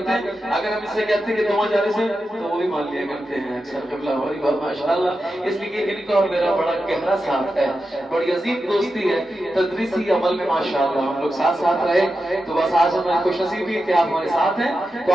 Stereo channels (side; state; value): both; normal; correlation 0.90